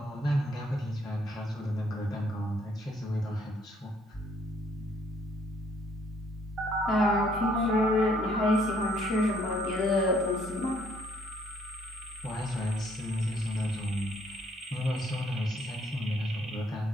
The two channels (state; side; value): normal; both; correlation 0.65